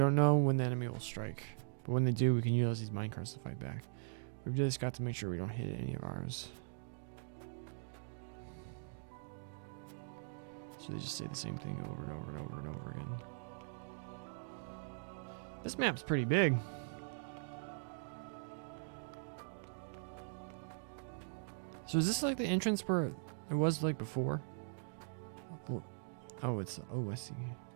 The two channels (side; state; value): left; silent; digital silence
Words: know when the enemy will strike, but when they do, we can use these minecarts to fight back. We've just got to make sure we don't hit any of ours. So they just say the same thing over and over and over and over again. This map's pretty big. So is this like the entrance where it was like before? Oh, it's, oh, I see.